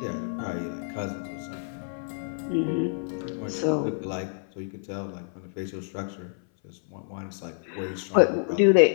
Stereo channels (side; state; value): right; silent; 58 dB below the other